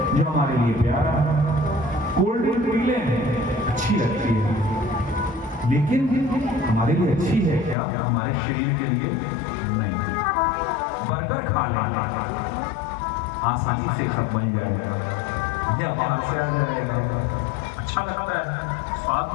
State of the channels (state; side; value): drops out; right; at 7.8 s